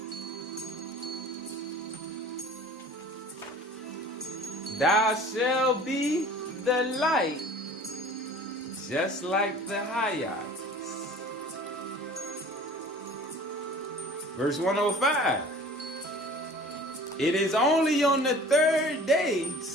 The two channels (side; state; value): both; normal; correlation 0.45